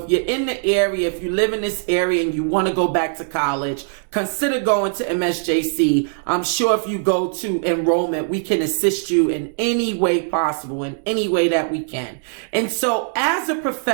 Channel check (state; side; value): silent; left; digital silence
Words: if you're in the area, if you live in this area and you want to go back to college, consider going to MSJC. I'm sure if you go to enrollment, we can assist you in any way possible, in any way that we can. And so as a